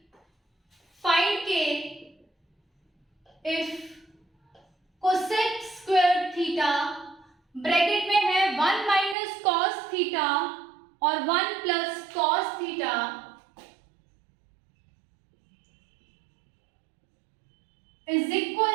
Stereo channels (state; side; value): drops out; left; at 9.2 s